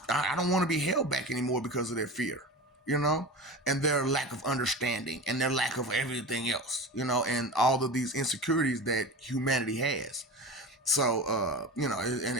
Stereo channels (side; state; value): both; normal; correlation 0.30